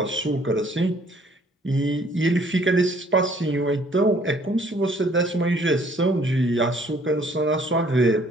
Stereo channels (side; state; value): both; normal; correlation 0.60